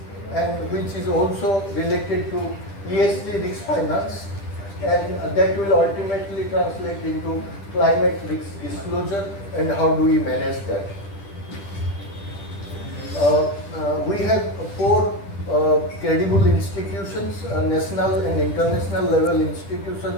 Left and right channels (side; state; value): right; late; 10 ms